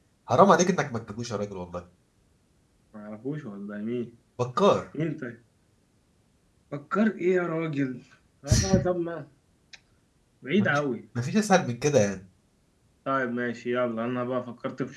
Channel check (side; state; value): both; identical; correlation 1.00